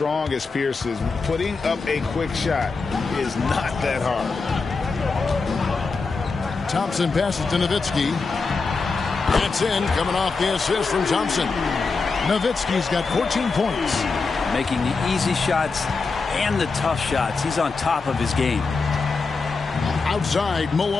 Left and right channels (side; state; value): right; quieter; 4.4 dB